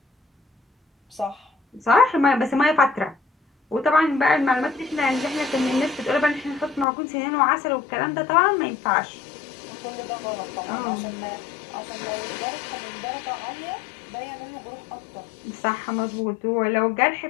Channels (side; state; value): right; drops out; at 6.9 s